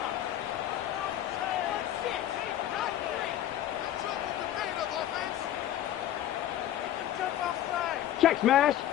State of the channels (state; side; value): quieter; right; 12.2 dB